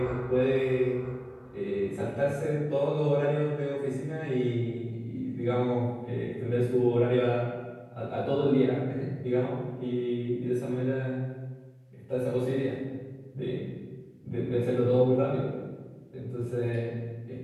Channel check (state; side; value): identical; both; correlation 1.00